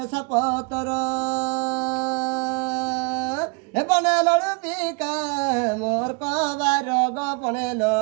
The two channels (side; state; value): left; quieter; 32.5 dB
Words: পতর বনে লড়ু বিকা মোর কবার গো বনে